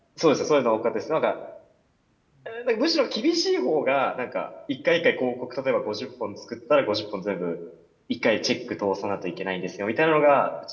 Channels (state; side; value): identical; both; correlation 1.00